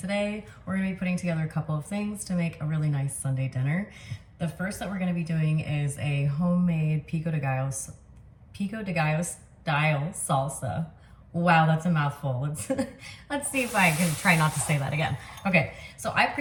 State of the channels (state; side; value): identical; both; correlation 1.00